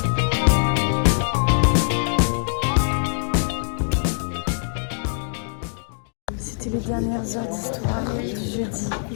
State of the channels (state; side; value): silent; right; digital silence